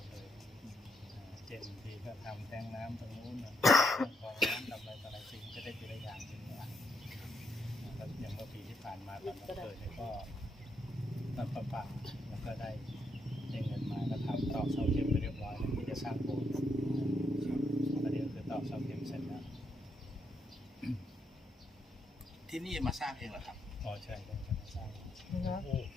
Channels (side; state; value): both; normal; correlation 0.77